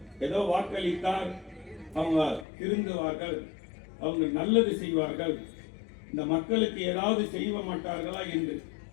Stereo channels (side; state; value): right; drops out; at 2.5 s